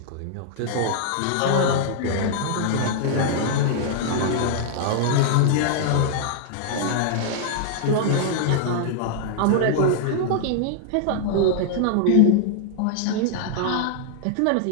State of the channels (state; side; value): different; both; correlation -0.01